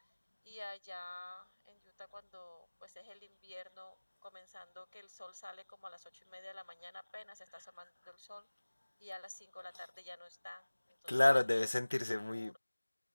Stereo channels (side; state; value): both; inverted; correlation -1.00